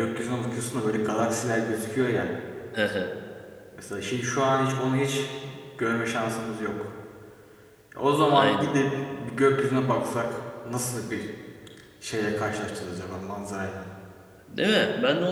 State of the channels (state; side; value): identical; both; correlation 1.00